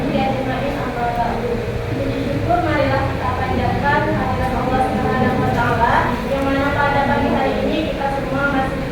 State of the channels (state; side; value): identical; both; correlation 1.00